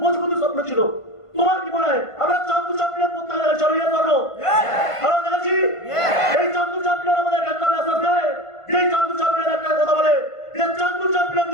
মজবুত স্বপ্ন ছিল। তোমার কি মনে হয় আমরা চান্দু চ্যাম্পিয়ন করতে গেলে চলো ইয়ে করো? আমরা দেখেছি এই চান্দু চ্যাম্পিয়ন আমাদের একটা মেসেজ দেয়, যে চান্দু চ্যাম্পিয়ন একটা কথা বলে যে চান্দু চ্যাম্পিয়ন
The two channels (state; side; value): late; right; 1.5 ms